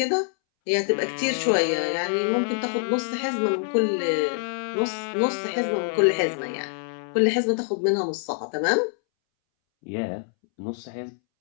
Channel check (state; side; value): silent; right; 62 dB below the other